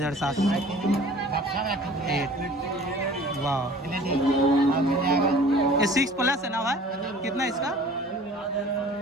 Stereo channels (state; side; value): normal; both; correlation 0.47